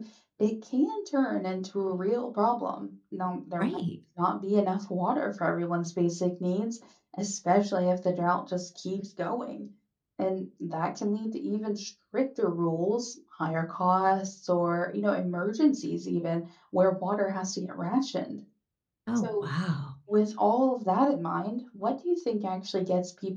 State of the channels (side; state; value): both; identical; correlation 1.00